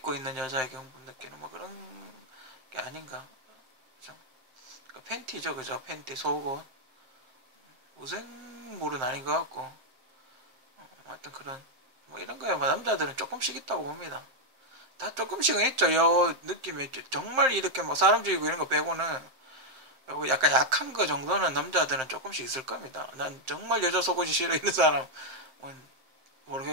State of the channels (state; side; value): late; left; 7.6 ms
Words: 있는 여자에게 흥분 느끼는 뭐 그런 게 아닌가, 그죠? 그러니까 팬티죠, 그죠? 팬티, 속옷. 무생물은 아닌 것 같고, 하여튼 그런 뭐 이런 거야. 뭐 남자들은 조금씩 있다고 봅니다. 다 조금씩은 있죠. 요 느낌이 정말 이렇게 뭐 사람 죽이고 이런 거 빼고는 약간 약한 거 정도는 남자들은 조금씩 있을 겁니다. 난 정말 여자 속옷이 싫어 이런 사람은